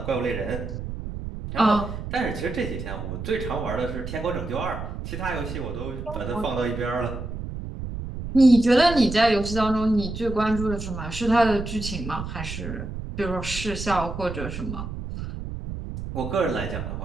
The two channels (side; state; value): right; noise; rumble, 7 dB below the sound